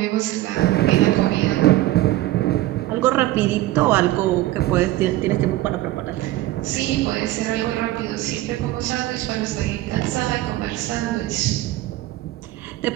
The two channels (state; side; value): quieter; left; 16.2 dB